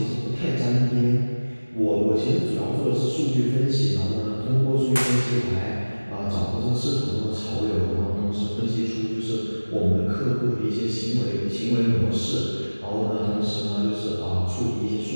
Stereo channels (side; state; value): both; inverted; correlation -1.00